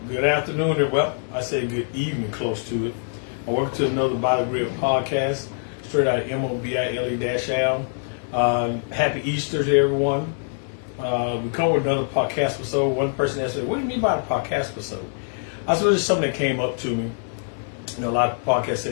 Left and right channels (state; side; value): silent; right; 63 dB below the other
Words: Good afternoon, and well, I say good evening, close to it. Welcome to another By the Grid podcast, straight out of MOBILE-Al. Happy Easter to everyone. We come with another podcast episode. One person asked me, "What do you mean by a podcast episode?" I said, "It's something that came up to me. You know, a lot of podcasts say